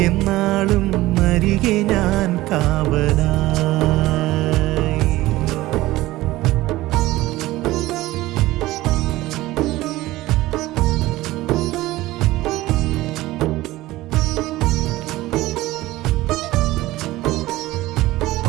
എന്നാളും അരികെ ഞാൻ കാവലായി.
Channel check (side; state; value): left; quieter; 17.5 dB